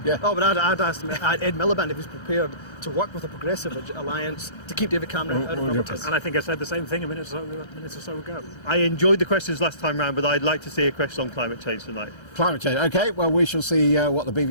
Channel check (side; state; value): right; late; 1.3 ms